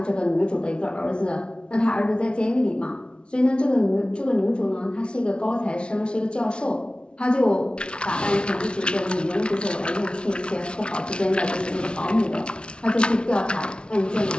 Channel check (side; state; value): right; late; 0.057 ms